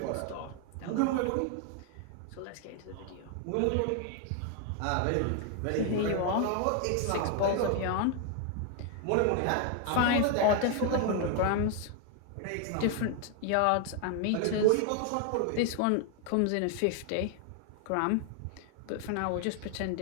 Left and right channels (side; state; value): both; different; correlation 0.01